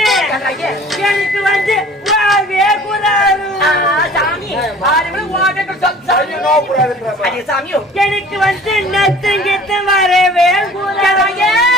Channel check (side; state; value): both; normal; correlation 0.47